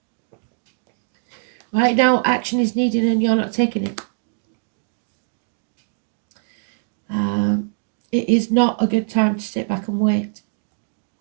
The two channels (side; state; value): left; silent; digital silence